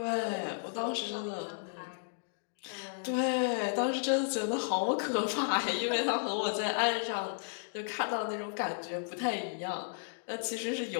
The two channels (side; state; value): right; silent; digital silence